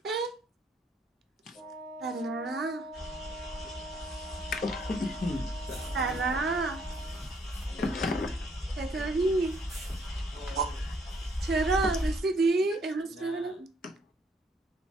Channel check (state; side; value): normal; both; correlation 0.67